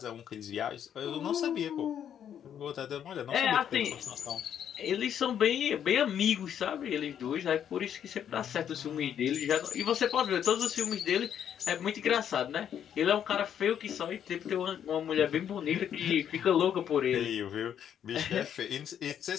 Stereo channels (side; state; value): right; quieter; 9.2 dB